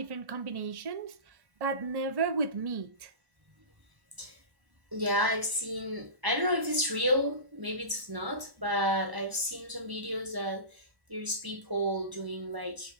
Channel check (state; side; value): late; left; 1.0 ms